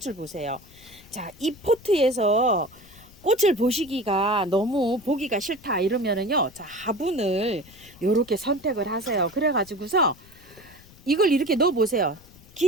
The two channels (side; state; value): left; noise; rumble, 24 dB below the sound